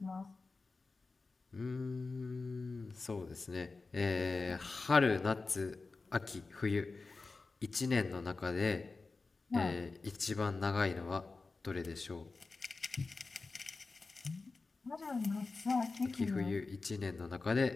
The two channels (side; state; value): right; quieter; 3.9 dB